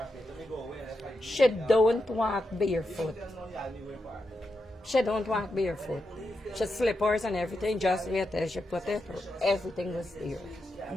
She don't walk barefoot. She don't walk barefoot. She slippers and everything, just wait till she put it, everything was there.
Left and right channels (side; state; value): both; normal; correlation 0.86